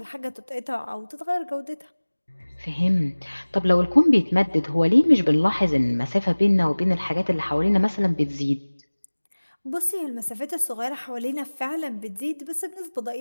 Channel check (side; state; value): both; inverted; correlation -1.00